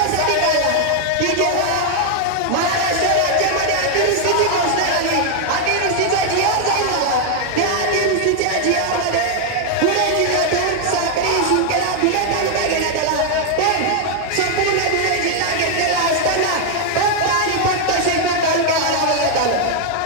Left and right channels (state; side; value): different; both; correlation 0.00